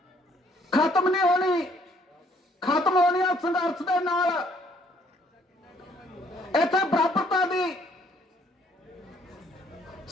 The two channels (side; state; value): both; normal; correlation 0.64